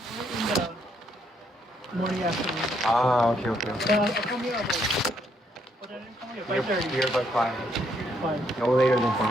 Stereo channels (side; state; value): both; normal; correlation 0.73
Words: the morning afternoon. Ah, okay. I'll come here about. What time did you come here? 5:30. Here by 5. Fine. No later than 5.